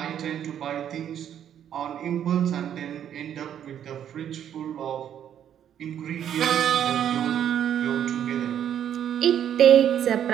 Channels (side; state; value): left; quieter; 9.7 dB